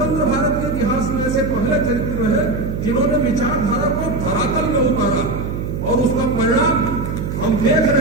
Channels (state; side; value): noise; right; hum, 4 dB below the sound